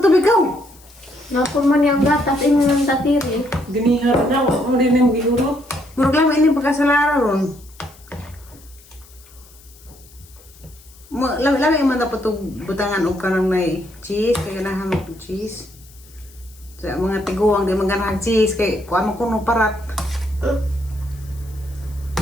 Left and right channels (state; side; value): noise; left; hiss, 25 dB below the sound